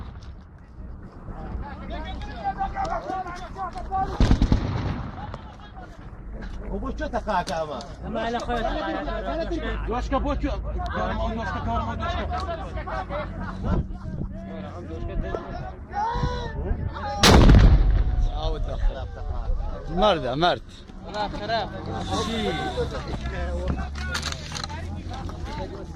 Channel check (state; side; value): identical; both; correlation 1.00